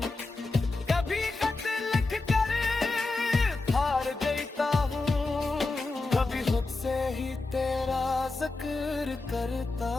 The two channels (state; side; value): quieter; right; 3.4 dB